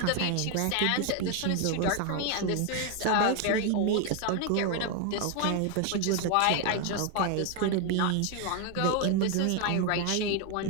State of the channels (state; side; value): different; both; correlation 0.01